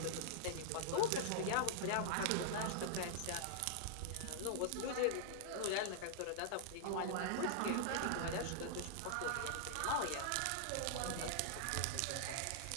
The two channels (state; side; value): different; both; correlation -0.01